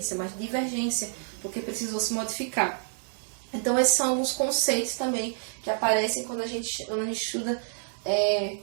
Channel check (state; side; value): silent; left; 59 dB below the other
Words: mas divergência, porque precisou se modificar. Então esses são alguns conceitos também que aparecem quando a gente estuda